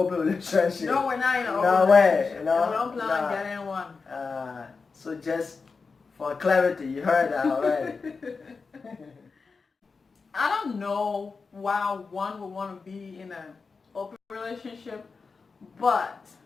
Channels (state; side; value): quieter; right; 4.6 dB